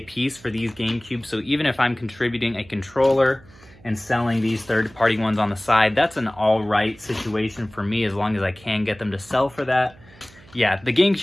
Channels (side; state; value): right; noise; hum, 25 dB below the sound